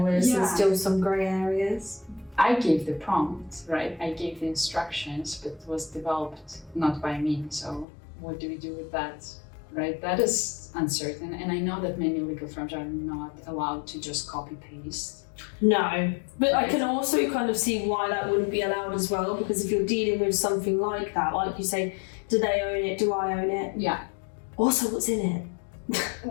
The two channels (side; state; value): right; drops out; at 7.9 s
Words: where there's still some grey areas. I gave the prompt, right? I gave the instructions, but it was developed not by me. So what do we do with that, right? That is uncertain. And I know that many legal firms are not allowed to just copy paste. No, but I can also kind of see why that wouldn't be allowed as well, because if you're dealing with something like that, like you say, do they own it? Do I own it? Yeah. Also, what's in it?